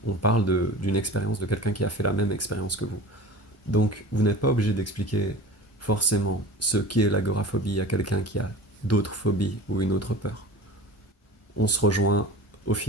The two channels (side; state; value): both; normal; correlation 0.37